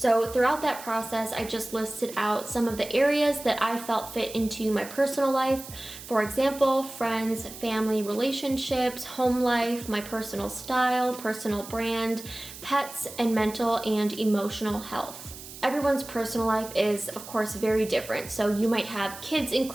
throughout that process, I just listed out some of the areas that I felt fit into my personal life. For example, friends, family, relationships, home life, my personal style, personal brand, pets, and mental and emotional health. Everyone's personal life is, of course, very different. So you might have kids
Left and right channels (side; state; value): right; noise; hiss, 14 dB below the sound